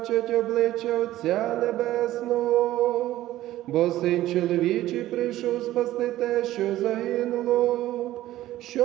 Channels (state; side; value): quieter; left; 14.8 dB